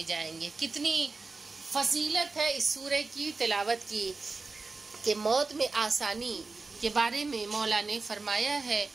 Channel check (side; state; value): left; quieter; 3.9 dB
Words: جائیں گے۔ کتنی فضیلت ہے اس سورہ کی تلاوت کی کہ موت میں آسانی کے بارے میں مولا نے فرمایا ہے